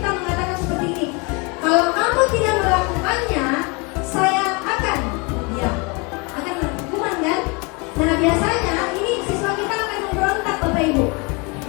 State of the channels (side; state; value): right; quieter; 29.9 dB